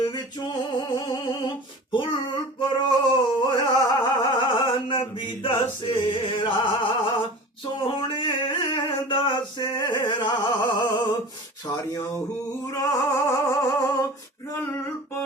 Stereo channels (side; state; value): both; normal; correlation 0.38